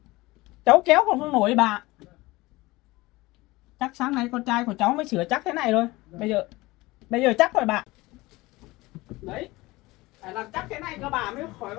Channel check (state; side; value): quieter; right; 20.7 dB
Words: cháu kéo còn không nổi bà. Chắc sáng nay con trai của cháu mới sửa chắc thế này thôi. Bây giờ chắc rồi bà. Đấy, phải làm chắc thế này cho bà mới khỏi